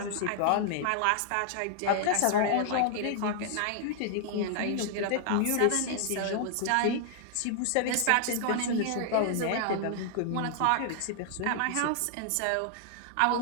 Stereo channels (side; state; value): both; different; correlation -0.01